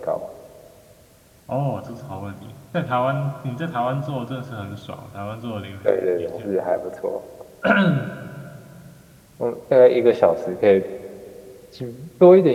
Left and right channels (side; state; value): both; identical; correlation 1.00